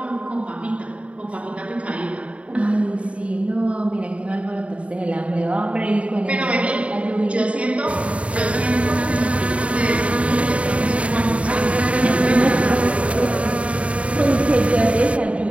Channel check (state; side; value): late; left; 0.063 ms